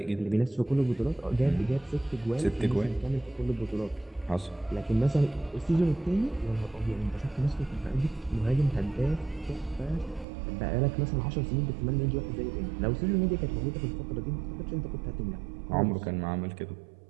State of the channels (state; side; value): drops out; left; at 10.2 s